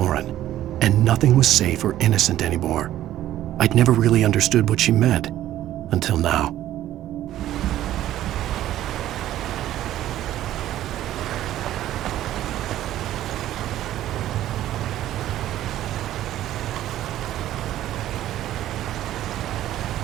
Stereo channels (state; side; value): quieter; left; 13.1 dB